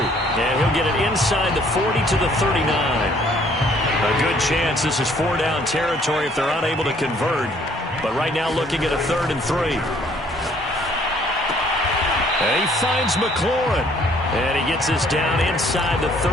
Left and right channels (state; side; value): normal; both; correlation 0.61